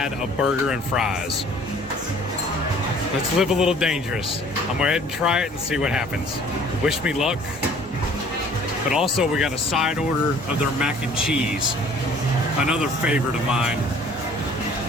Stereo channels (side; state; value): both; normal; correlation 0.53